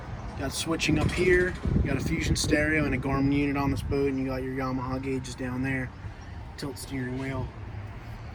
Got switching up here. You got a Fusion stereo and a Garmin unit on this boat, and you got your Yamaha gauges down there. Tilt steering wheel.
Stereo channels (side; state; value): both; identical; correlation 1.00